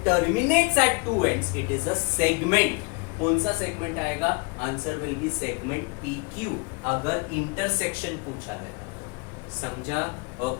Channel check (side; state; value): right; quieter; 31.8 dB